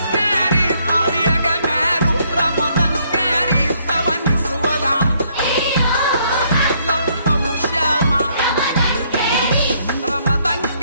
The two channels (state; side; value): inverted; both; correlation -0.69